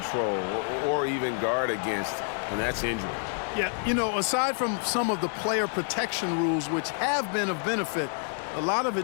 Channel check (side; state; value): right; silent; 59 dB below the other